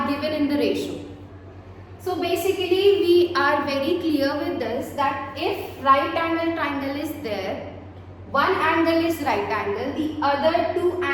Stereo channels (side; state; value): both; identical; correlation 1.00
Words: given in the ratio. So basically we are very clear with this that if right angle triangle is there, one angle is right angle, the other two